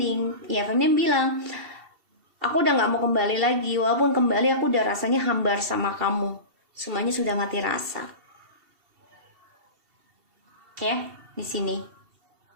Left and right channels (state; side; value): late; left; 2.7 ms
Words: ya feminim bilang, aku udah gak mau kembali lagi, walaupun kembali aku udah rasanya hambar sama kamu, semuanya sudah mati rasa. Ya, di sini.